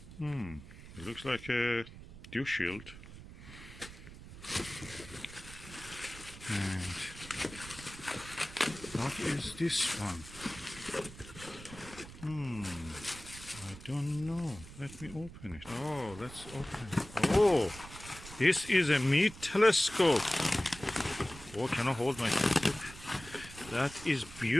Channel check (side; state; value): right; noise; rumble, 16 dB below the sound